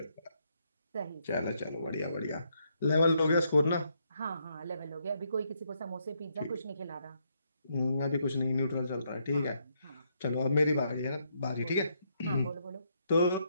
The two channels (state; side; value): inverted; both; correlation -0.75